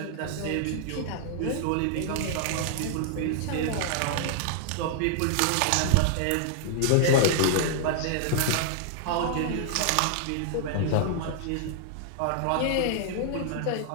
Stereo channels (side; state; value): both; different; correlation -0.01